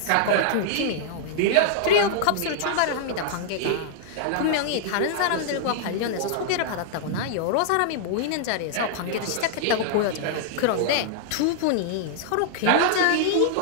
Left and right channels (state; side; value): different; both; correlation -0.01